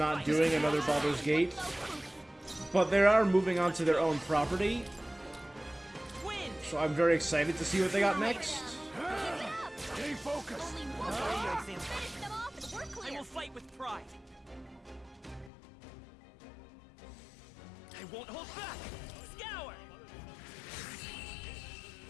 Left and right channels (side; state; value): right; drops out; at 15.5 s